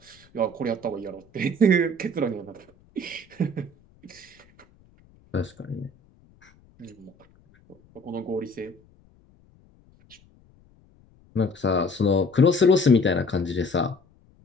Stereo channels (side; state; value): left; noise; rumble, 30 dB below the sound